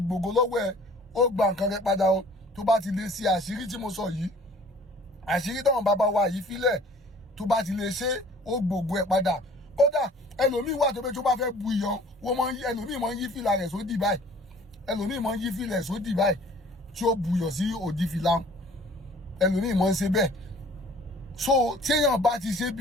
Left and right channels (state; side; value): normal; both; correlation 0.51